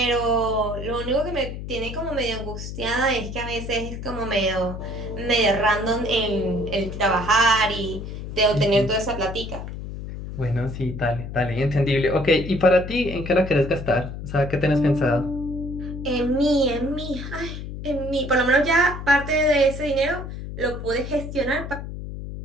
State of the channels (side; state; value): left; noise; hum, 8 dB below the sound